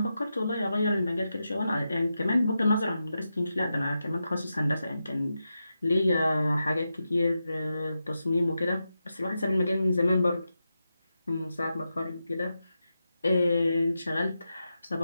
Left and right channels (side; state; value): both; inverted; correlation -0.89